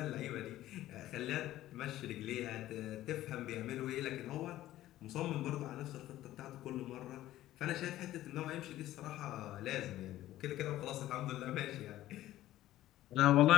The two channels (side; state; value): right; quieter; 14.5 dB